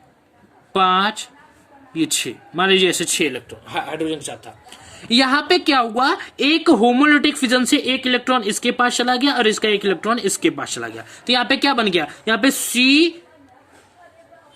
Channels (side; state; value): both; identical; correlation 1.00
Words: 5 ये 6, मान लीजिए ऐसे 6 इलेक्ट्रॉन हाइड्रोजन के साथ था। यहाँ पे क्या हुआ, एक होमोलिटिक फिजन से एक इलेक्ट्रॉन इसके पास चला गया और इसका एक इलेक्ट्रॉन इसके पास चला गया, तो यहाँ पे क्या बन गया, यहाँ पे